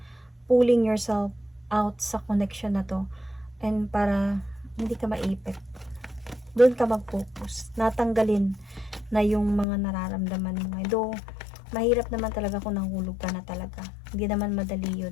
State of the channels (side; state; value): right; drops out; at 9.7 s